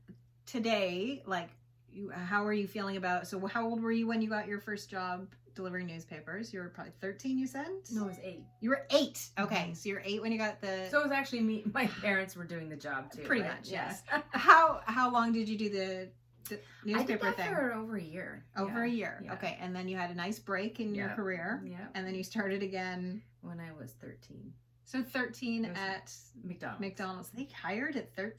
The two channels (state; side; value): identical; both; correlation 1.00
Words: today, like, how are you feeling about, so how old were you when you got your first job delivering newspapers? You were probably 13, you said? No, it was 8. You were 8. Okay, Mhm. so you're 8 when you got the, So it was actually me. My parents were doing the job too. Pretty right? much, Yeah. yes. how long did you do the newspaper I did that thing? for over a year. Over Yeah. a year. Yeah. Okay, and then you had a nice break in your Yeah. career, Yeah. and then you started again. When I was 13. So 13 It was at McDonald's. McDonald's. They hired at